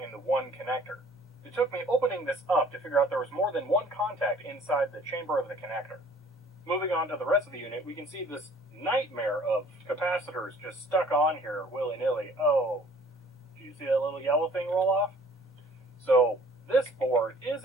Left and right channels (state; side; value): normal; both; correlation 0.54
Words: in the one connector. It took me opening this up to figure out there was more than one contact inside the chamber of the connector. Moving on to the rest of the unit, we can see this nightmare of capacitors just stuck on here willy-nilly. Oh, do you see that little yellow thing roll off? So this board is,